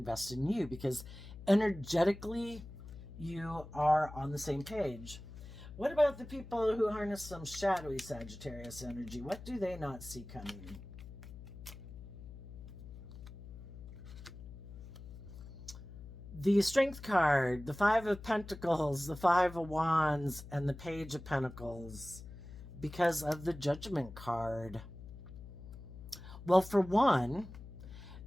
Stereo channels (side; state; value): left; noise; hum, 14 dB below the sound